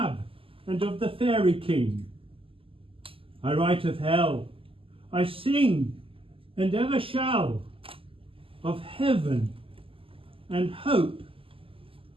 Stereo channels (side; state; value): left; late; 0.26 ms